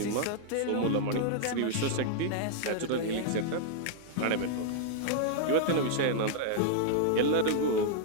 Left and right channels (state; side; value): different; both; correlation -0.01